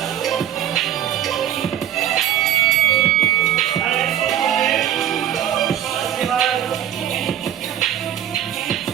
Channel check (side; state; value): left; quieter; 11.3 dB